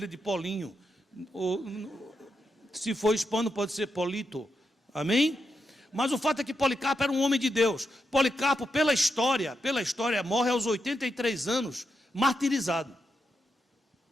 de Polinho, ou, se for hispano pode ser Polito, amém? Mas o fato é que Policarpo era um homem de Deus. Policarpo, pela história, morre aos 83 anos, martirizado.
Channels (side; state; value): both; normal; correlation 0.85